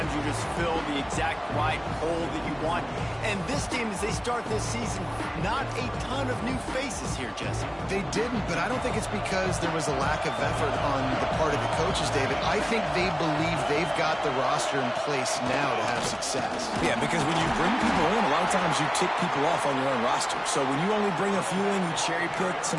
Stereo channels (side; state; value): both; identical; correlation 1.00